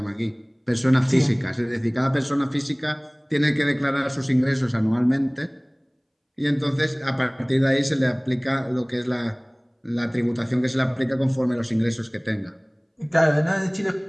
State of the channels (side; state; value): both; identical; correlation 1.00